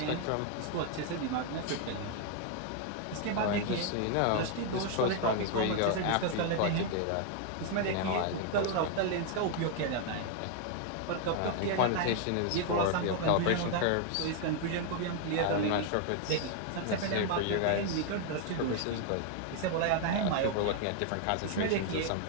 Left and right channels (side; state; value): both; different; correlation 0.00